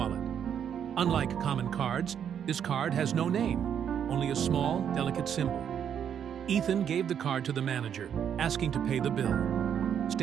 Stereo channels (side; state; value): left; quieter; 8.6 dB